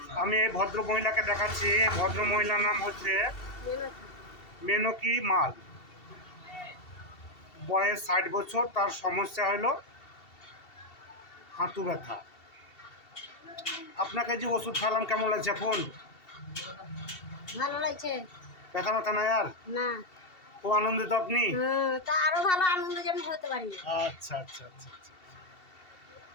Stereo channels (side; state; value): right; late; 2.7 ms